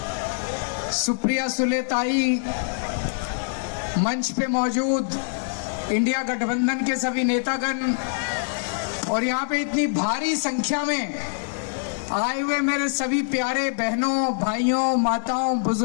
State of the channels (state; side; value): silent; right; 62 dB below the other